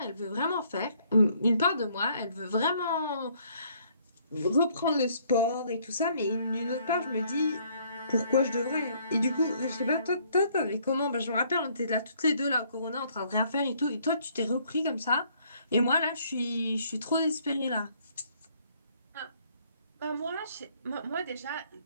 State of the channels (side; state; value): both; inverted; correlation -0.65